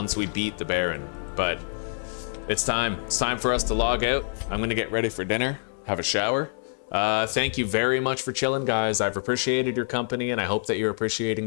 we beat the Baron, but it's time. It's time for us to log out. I'm gonna get ready for dinner, have a shower, Thank you very much for chilling, guys. I've appreciated your company, and I hope that you're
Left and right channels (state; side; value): silent; right; digital silence